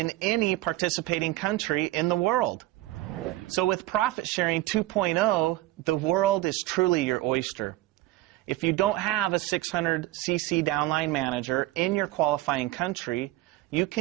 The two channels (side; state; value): left; quieter; 17.0 dB